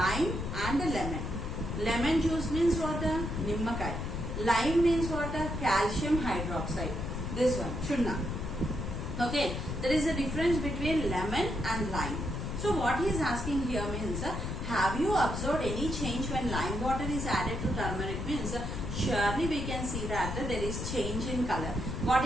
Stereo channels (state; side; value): noise; left; rumble, 4 dB below the sound